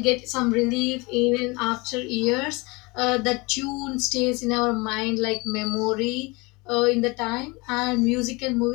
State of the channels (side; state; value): right; quieter; 25.8 dB